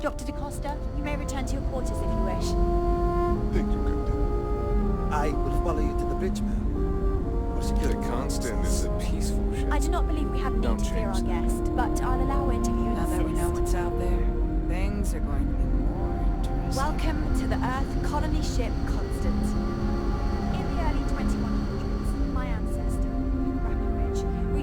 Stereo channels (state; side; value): identical; both; correlation 1.00